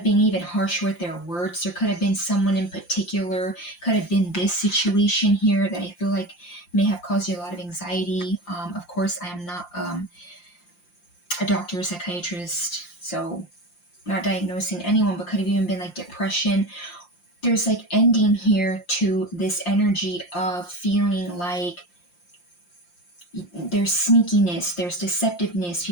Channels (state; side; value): late; right; 5.7 ms